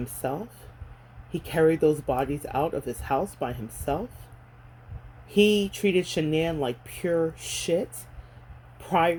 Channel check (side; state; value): both; identical; correlation 1.00